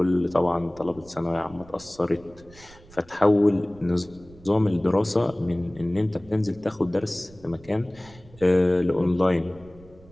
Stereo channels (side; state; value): right; noise; rumble, 23 dB below the sound